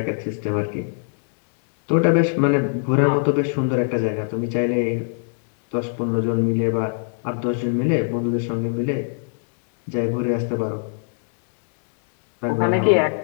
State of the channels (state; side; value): silent; right; digital silence